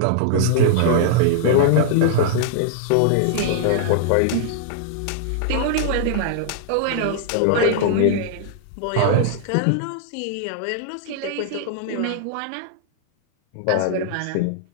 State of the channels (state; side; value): different; both; correlation -0.01